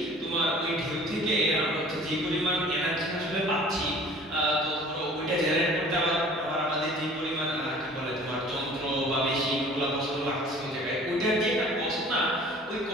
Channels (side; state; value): both; normal; correlation 0.48